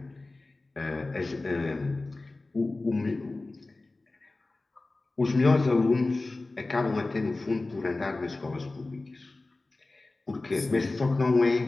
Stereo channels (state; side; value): quieter; right; 3.2 dB